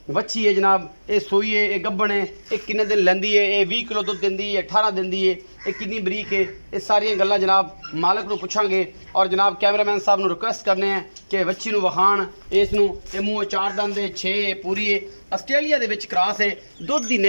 बच्ची है जनाब, ये सूई है, ये गब्बन है, ये किन्ने दिन लैंदी है, ये 20 किलो दुध दिंदी है, 18 दिंदी है, ये कितनी बरीक है, ये सारियां गल्लां जनाब मालक नूं पुछांगे। और जनाब कैमरामैन साहब नूं रिक्वेस्ट करने हैं कि बच्ची नूं वखाण इस नूं, ये मूँह 4 दंद है, 6 पूरी है, आस्ट्रेलिया दे विच क्रॉस है, दुध दी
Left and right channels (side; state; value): both; inverted; correlation -1.00